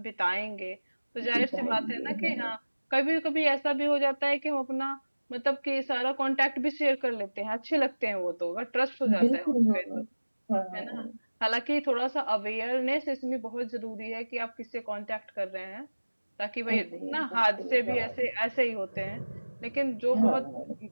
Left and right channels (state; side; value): inverted; both; correlation -1.00